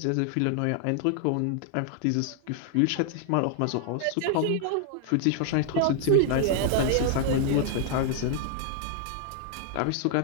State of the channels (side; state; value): both; different; correlation -0.01